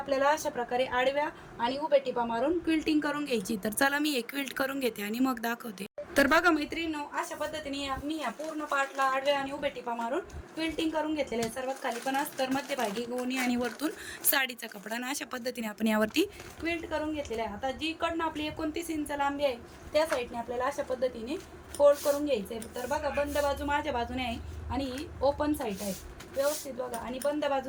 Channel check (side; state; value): both; identical; correlation 1.00